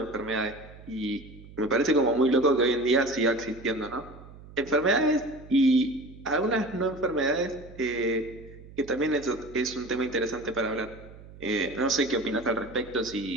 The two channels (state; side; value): noise; right; hum, 18 dB below the sound